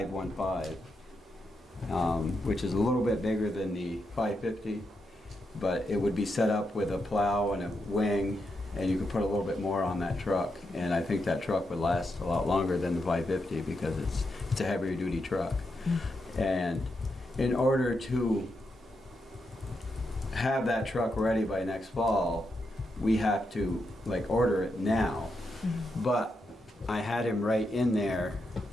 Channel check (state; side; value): normal; both; correlation 0.84